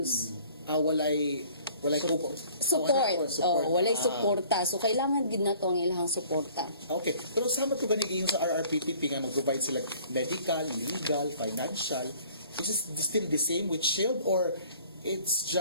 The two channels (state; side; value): inverted; both; correlation -0.52